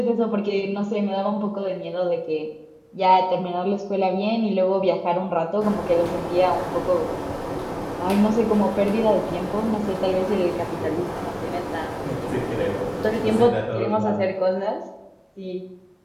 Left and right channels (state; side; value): identical; both; correlation 1.00